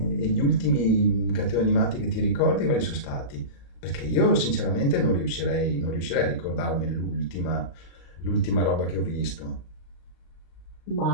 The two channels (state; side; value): late; right; 35 ms